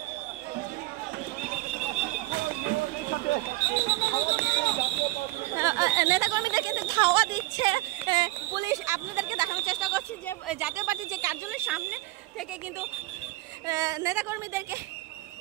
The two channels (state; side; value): quieter; left; 19.5 dB